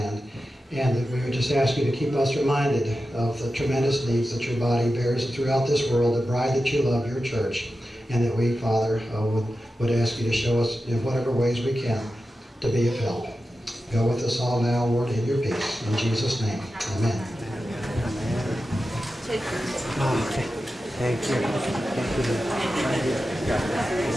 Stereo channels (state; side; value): normal; both; correlation 0.92